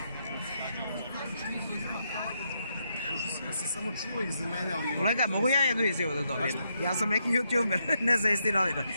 Ja sam samo čuo iz mene, ali... Kolega, mogu ja jednu izjavu da dobijem? Ja sam neki youtuber, nezavisni novinar.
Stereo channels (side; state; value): both; inverted; correlation -0.80